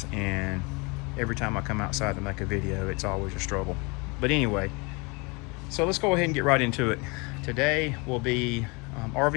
and every time I come outside to make a video, it's always a struggle. But anyway, so let's go ahead and get right into it. Today will be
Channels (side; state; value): right; quieter; 28.8 dB